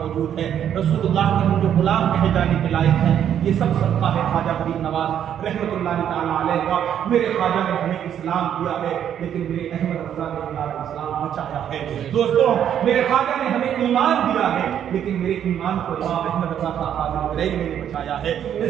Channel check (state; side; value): quieter; left; 9.6 dB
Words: ہے، رسول اللہ کے ہم جو غلام کہے جانے کے لائق ہیں، یہ سب صدقہ ہے خواجہ غریب نواز رحمۃ اللہ تعالیٰ علیہ کا۔ میرے خواجہ نے ہمیں اسلام دیا ہے لیکن میرے احمد رضا نے ہمارا اسلام بچایا ہے۔ دوستوں، میرے خواجہ نے ہمیں ایمان دیا ہے لیکن میرے ایمان کو امام احمد رضا کا خواجہ غریب نے بچایا ہے۔